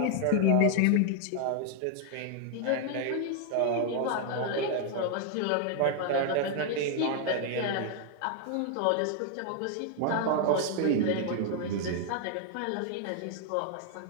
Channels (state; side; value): different; both; correlation 0.00